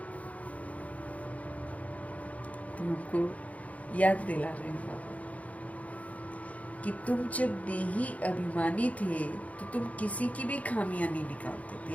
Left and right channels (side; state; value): right; late; 0.069 ms